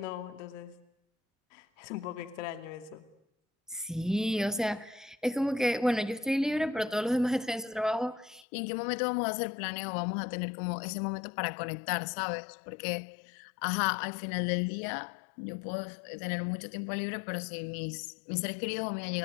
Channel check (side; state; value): right; drops out; at 8.5 s